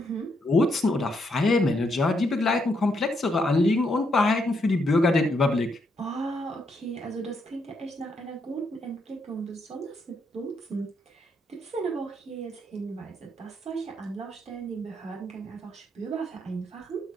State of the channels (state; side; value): normal; both; correlation 0.77